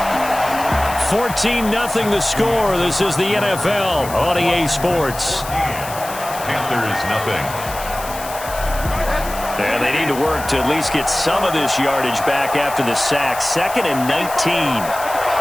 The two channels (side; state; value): left; noise; hiss, 12 dB below the sound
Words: (14-0) the score. This is the NFL on EA Sports. Panthers nothing. And they need to work to at least get some of this yardage back after the sack. 2nd and 19.